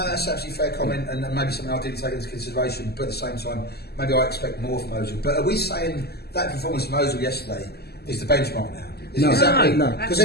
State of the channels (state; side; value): late; right; 0.46 ms